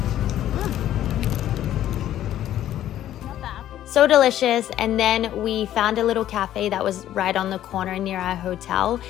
So delicious. And then we found a little cafe that was right on the corner near our hotel.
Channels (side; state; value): right; quieter; 12.2 dB